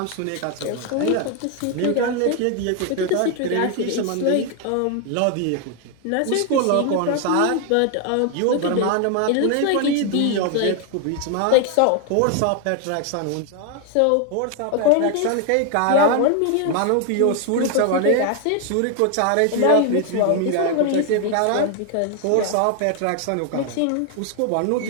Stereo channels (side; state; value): both; different; correlation 0.01